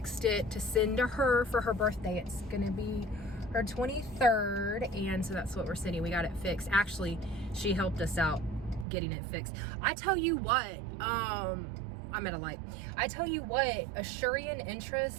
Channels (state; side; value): drops out; left; at 8.8 s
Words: it to send to her for her birthday. It's gonna be her 23rd, and so that's what we're sending. We got it fixed. Actually, she helped us out getting it fixed. I tell you what, I'm at a light. I tell you what, Asurian